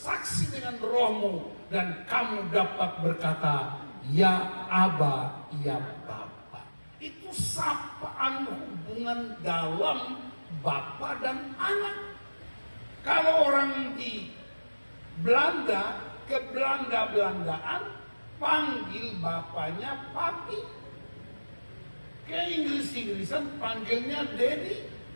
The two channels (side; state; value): both; inverted; correlation -1.00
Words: dengan rohmu, dan kamu dapat berkata, ya Aba, ya Bapa. Itu sapaan hubungan dalam Bapa dan anak. Kalau orang di Belanda, ke Belanda-Belandaan, panggil bapaknya papi. Ke Inggris-Inggrisan panggilnya daddy.